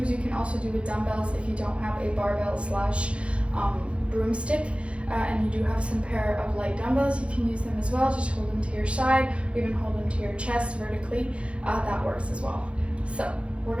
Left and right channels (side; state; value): left; late; 0.060 ms